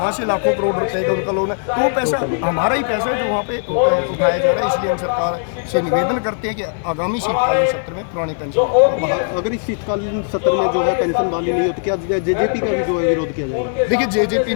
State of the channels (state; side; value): silent; right; digital silence